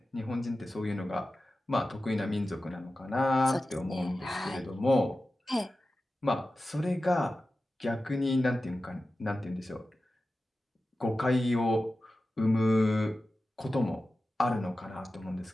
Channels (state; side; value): normal; both; correlation 0.94